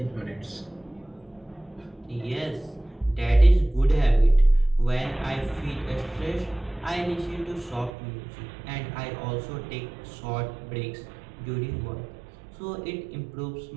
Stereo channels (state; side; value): drops out; left; at 7.9 s